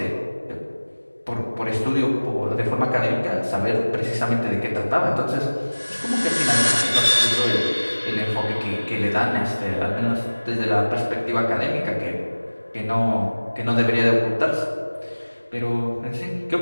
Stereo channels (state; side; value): inverted; both; correlation -1.00